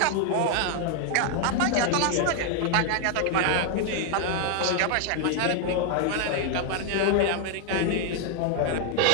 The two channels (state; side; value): different; both; correlation 0.00